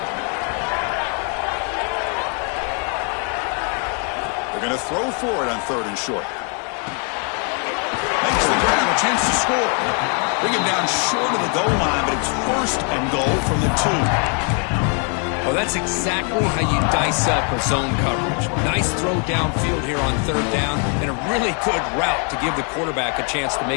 They're going to throw for it on 3rd and short. Makes the grab, a chance to score. Bring him down short of the goal line, but it's 1st and goal from the 2. Well, that's exactly how you dice up a zone coverage. Nice throw downfield here on 3rd down, and a really good route to give the quarterback a chance to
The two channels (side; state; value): right; quieter; 39.9 dB